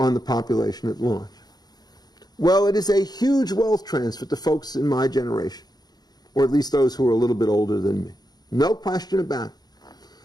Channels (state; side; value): late; right; 0.19 ms